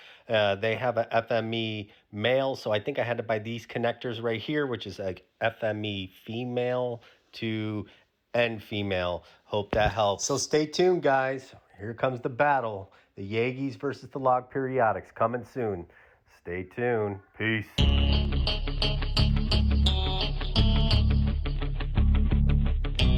They have a FME male, so I think I had to buy these connectors right here, which is like FME female to end female. Hope that helps. So stay tuned, guys. Here comes the battle. The Yagis versus the log periodics coming soon. Stay tuned. Peace.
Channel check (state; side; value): identical; both; correlation 1.00